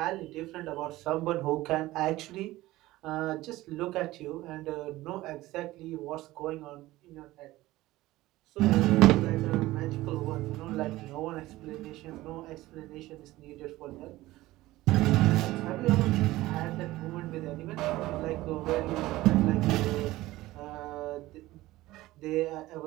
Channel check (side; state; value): left; quieter; 17.5 dB